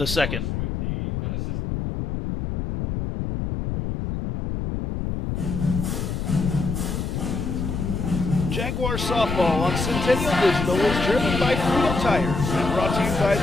second. Jaguar softball on Centennial Digital is driven by Freedom Tire and brought to you by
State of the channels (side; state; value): left; noise; rumble, 3 dB below the sound